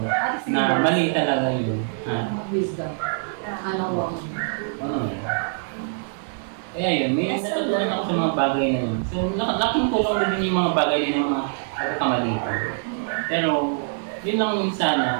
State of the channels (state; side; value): silent; left; digital silence